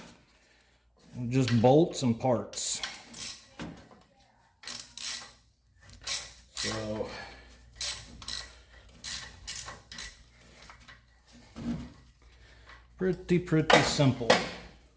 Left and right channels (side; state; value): both; identical; correlation 1.00